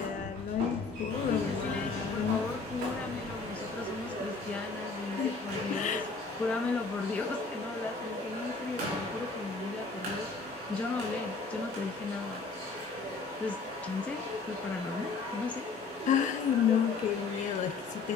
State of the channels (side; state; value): right; quieter; 4.4 dB